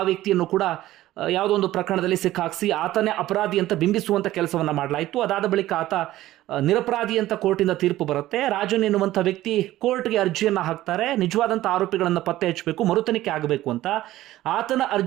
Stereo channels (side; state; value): left; quieter; 15.2 dB